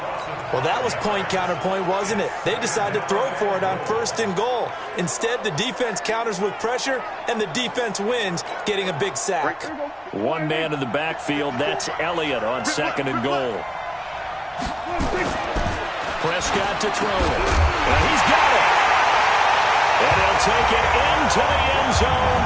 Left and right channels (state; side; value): identical; both; correlation 1.00